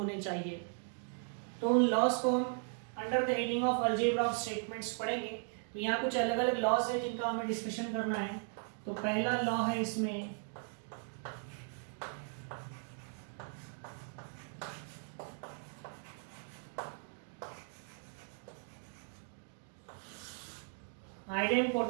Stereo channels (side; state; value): left; silent; 53 dB below the other